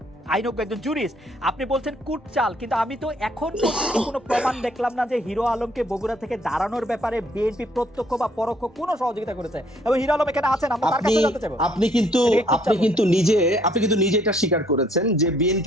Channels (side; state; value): both; normal; correlation 0.65